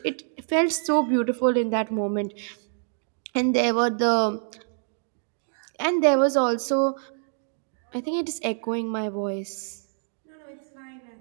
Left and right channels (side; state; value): left; silent; digital silence